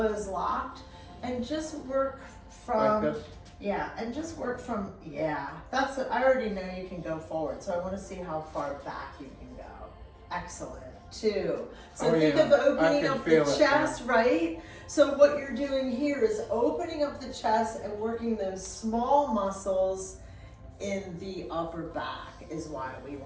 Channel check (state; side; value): identical; both; correlation 1.00